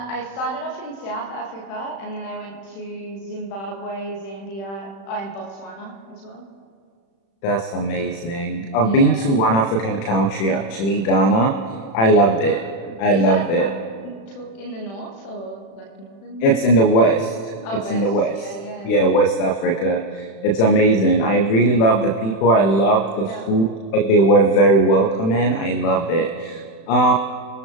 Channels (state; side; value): late; right; 36 ms